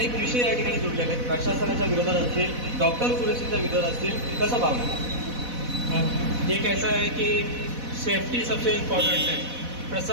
विषय या ठिकाणी जुळलेले आहेत. प्रशासनाच्या विरोधात असतील, डॉक्टर सुरक्षेच्या विरोधात असतील, कसं पाहणार? एक ऐसा है कि सेफ्टी सबसे इम्पोर्टेंट है.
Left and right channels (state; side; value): late; left; 4.1 ms